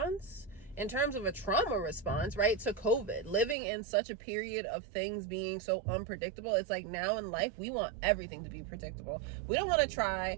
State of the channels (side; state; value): left; drops out; at 3.6 s